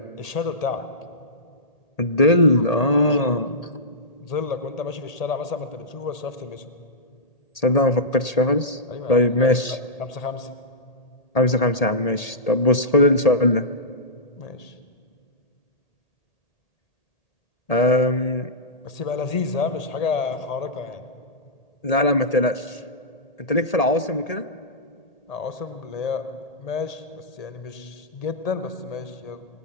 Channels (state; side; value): late; right; 1.8 ms